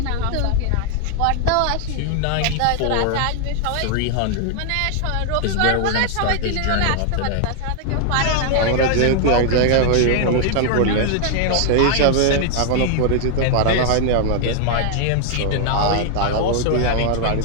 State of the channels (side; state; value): both; different; correlation 0.00